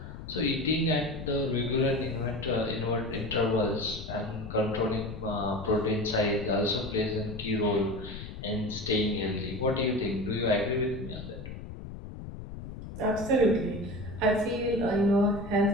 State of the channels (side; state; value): left; noise; rumble, 11 dB below the sound